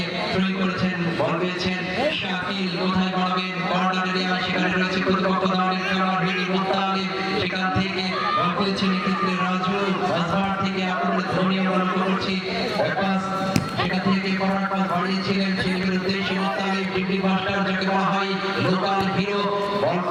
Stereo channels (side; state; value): both; identical; correlation 1.00